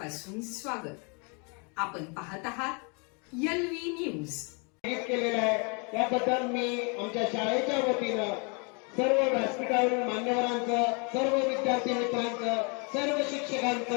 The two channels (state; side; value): quieter; right; 34.0 dB